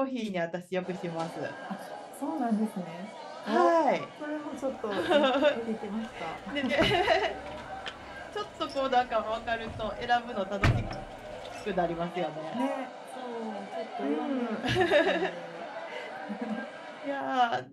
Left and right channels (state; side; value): identical; both; correlation 1.00